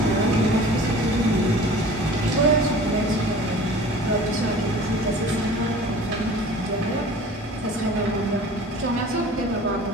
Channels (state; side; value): normal; both; correlation 0.43